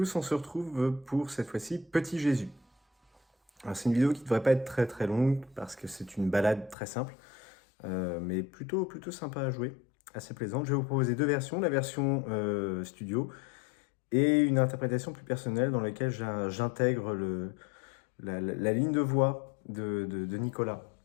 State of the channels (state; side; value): drops out; right; at 6.8 s